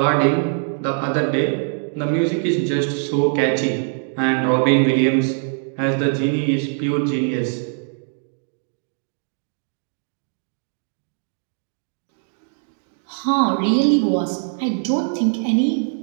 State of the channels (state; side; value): silent; left; 58 dB below the other